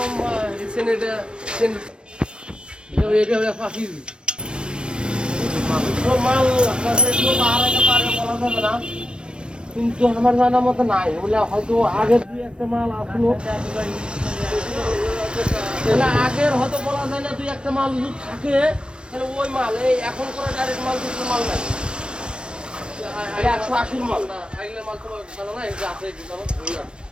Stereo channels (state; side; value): late; left; 0.055 ms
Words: সেনেটা এটা ফাঁসি মাল বলা যাবে না, কিন্তু আমার জানার মতো নাই। বলে হয়তো আগের 2-1টা মাল আসলো, আগের হয়তো বলা যায় না। 2-1টা মাল যদি থাকে তাহলে ওই মাল এই এখন করে ডাইরেক্ট মাল দুটো মাল নাই, 180 মাল না। আগলে মাল তো জানা না, এটা আছে কি জানো